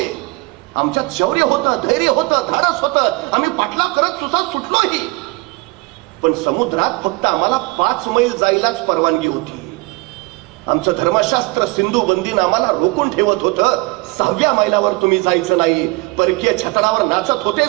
आमच्यात शौर्य होतं, धैर्य होतं, धाडस होतं, आम्ही पाटला करत सुसाट सुटलोही, पण समुद्रात फक्त आम्हाला 5 मैल जायलाच परवानगी होती. आमचं धर्मशास्त्र सिंधू बंदीनं आम्हाला रोखून ठेवत होतं. 6व्या मैलावर तुम्ही जायचं नाही. परकीय छतडावर नाचत होते,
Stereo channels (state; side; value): quieter; left; 24.6 dB